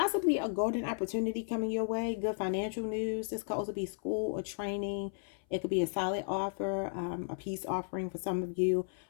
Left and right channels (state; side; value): silent; right; 55 dB below the other